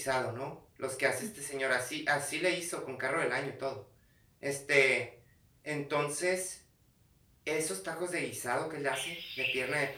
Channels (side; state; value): both; identical; correlation 1.00